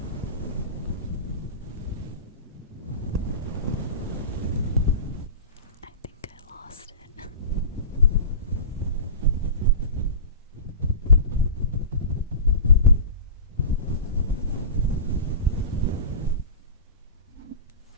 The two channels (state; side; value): inverted; both; correlation -0.32